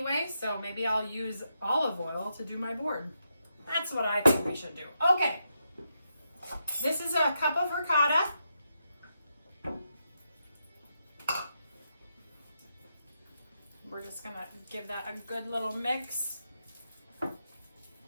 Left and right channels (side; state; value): both; inverted; correlation -0.83